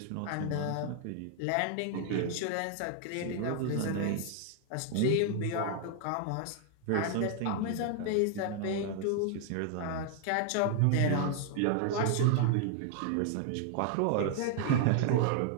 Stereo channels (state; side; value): different; both; correlation 0.00